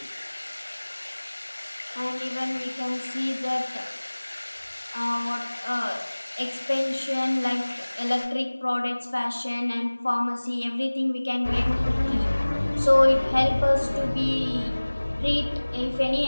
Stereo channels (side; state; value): both; inverted; correlation -1.00